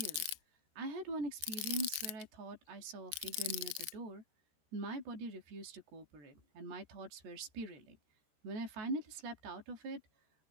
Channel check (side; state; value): left; late; 13 ms